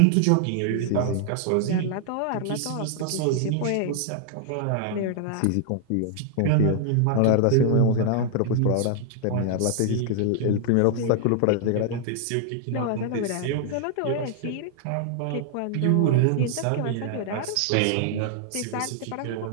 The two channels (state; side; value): different; both; correlation 0.00